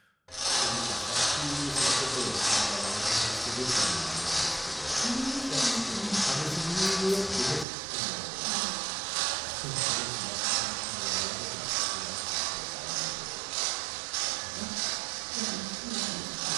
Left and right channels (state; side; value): drops out; left; at 7.7 s